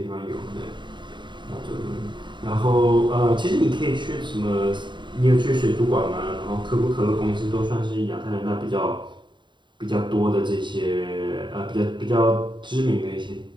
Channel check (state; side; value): late; left; 0.23 ms